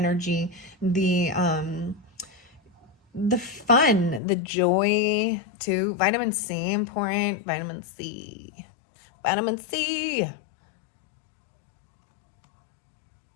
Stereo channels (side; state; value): right; drops out; at 4.2 s